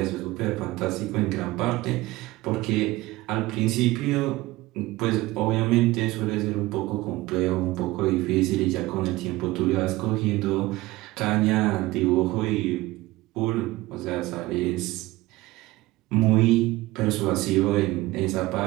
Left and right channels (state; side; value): quieter; left; 19.0 dB